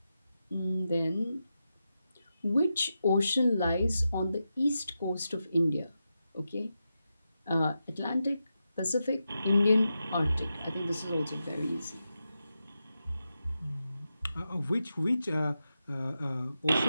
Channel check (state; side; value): inverted; both; correlation -0.89